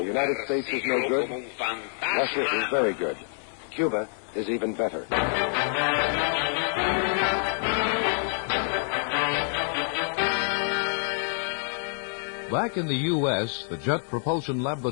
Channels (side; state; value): right; silent; 57 dB below the other